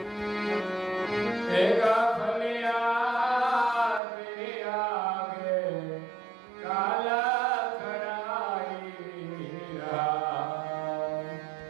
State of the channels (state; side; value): drops out; left; at 4.0 s